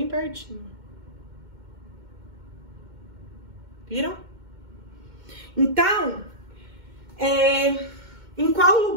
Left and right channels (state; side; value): late; left; 2.1 ms